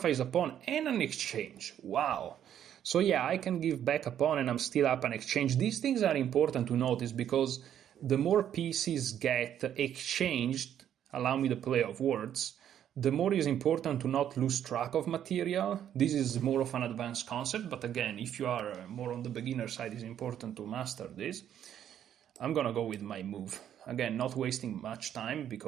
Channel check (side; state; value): left; quieter; 10.1 dB